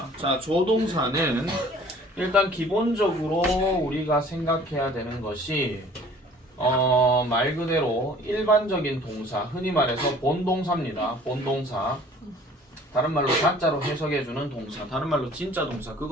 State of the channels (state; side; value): normal; both; correlation 0.51